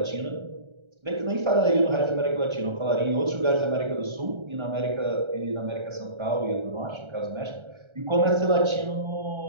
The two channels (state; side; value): late; left; 1.3 ms